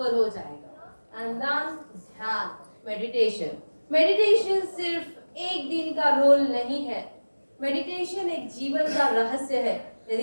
हो जाएगा। एंड देन ध्यान, मेडिटेशन। मेडिटेशन सिर्फ एक दिन का रोल नहीं है, मेडिटेशन एक जीवन का रहस्य है।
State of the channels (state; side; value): inverted; both; correlation -1.00